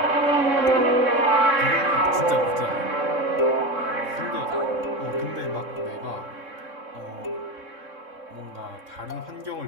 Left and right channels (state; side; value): late; left; 3.6 ms